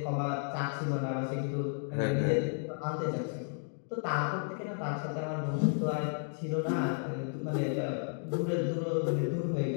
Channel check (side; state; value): right; silent; 56 dB below the other